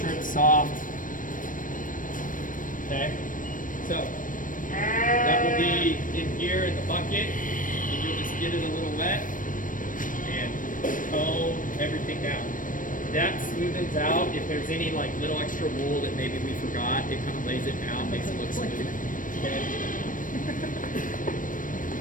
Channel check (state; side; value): late; right; 0.39 ms